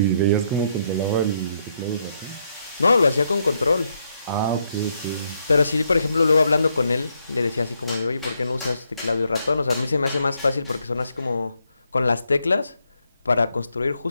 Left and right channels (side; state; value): both; inverted; correlation -0.76